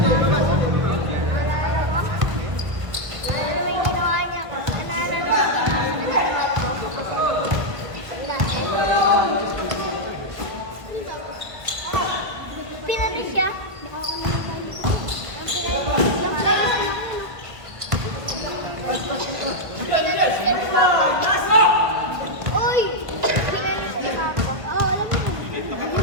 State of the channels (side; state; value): left; late; 1.7 ms